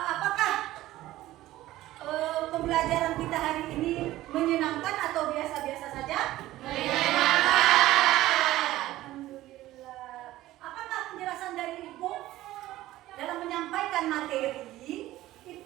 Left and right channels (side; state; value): left; quieter; 15.7 dB